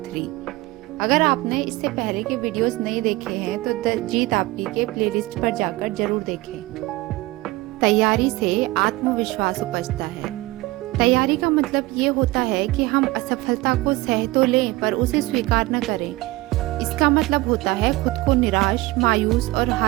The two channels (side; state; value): left; quieter; 19.9 dB